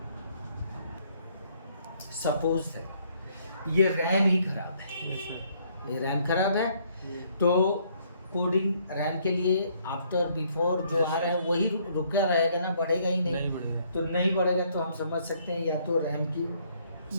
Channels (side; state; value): both; inverted; correlation -0.67